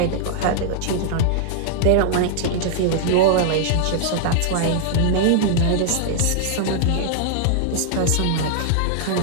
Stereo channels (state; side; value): different; both; correlation -0.01